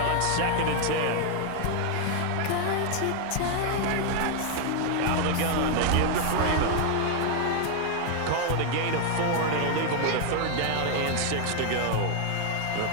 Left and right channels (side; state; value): both; different; correlation 0.00